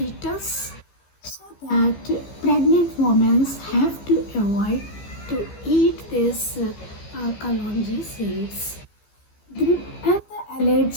so that pregnant women have to avoid to eat this kalonji seeds. And the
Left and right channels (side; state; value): right; late; 15 ms